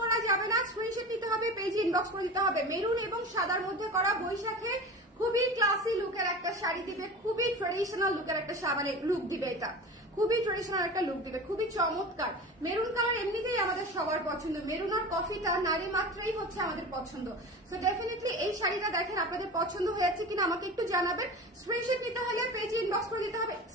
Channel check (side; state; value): both; normal; correlation 0.33